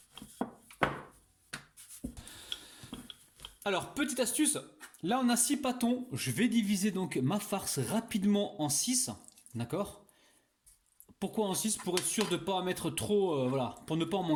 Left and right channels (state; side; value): identical; both; correlation 1.00